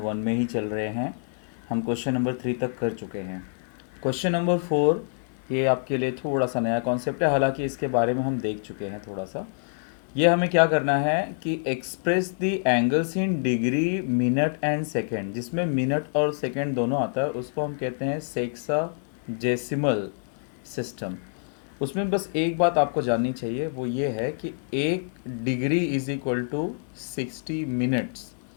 में ही चल रहे हैं। हम क्वेश्चन नंबर 3 तक कर चुके हैं। क्वेश्चन नंबर 4 ये आपके लिए थोड़ा सा नया कॉन्सेप्ट है, हालांकि इसके बारे में हम देख चुके हैं थोड़ा सा। ये हमें क्या करना है कि express the angles in degree, minute and second. जिसमें मिनट और सेकेंड दोनों आता है उसको हम कहते हैं सेक्साजेसिमल सिस्टम। उसमें बस एक बात आपको जाननी चाहिए, वो ये है कि 1 degree is equal to 60 minutes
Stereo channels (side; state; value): right; silent; 56 dB below the other